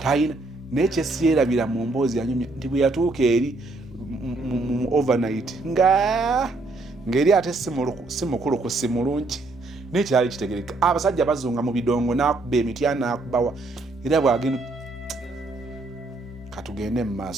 nekyesiyerabira mu mboozi yanyumya nti bwe yatuuka eri mu overnight ng'eri ate si mukulu ku si mulungi nekyali kitegereka. Abasajja bazunga mu bidongo n'akuba emiti n'akubawa era bwagenda katugende mu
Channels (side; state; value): left; quieter; 3.2 dB